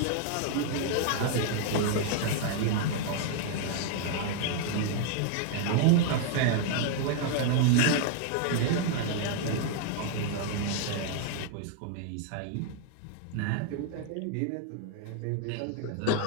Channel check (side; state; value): both; different; correlation 0.00